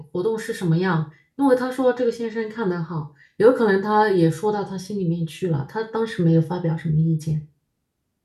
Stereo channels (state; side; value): identical; both; correlation 1.00